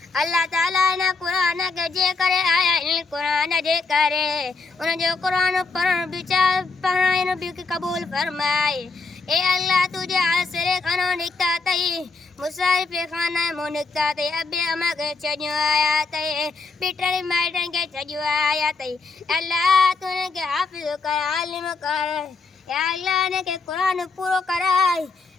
اللہ تعالیٰ نے قرآن کے جے کرے آیا قرآن جے کرے ان جو قرآن پڑھن بچار پڑھائن بھی قبول فرمائے اے اللہ تجھے آسرے خانو نکتا تئی مسائف خانہ مو نکتا تئی ابے اما کے چڑھو آیا تئی بیٹر مائٹن کے چڑھو آیا تئی اللہ تو نے کے حافظ کر عالم کر یا اللہ نے کے قرآن پورو کرائے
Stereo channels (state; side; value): quieter; right; 4.1 dB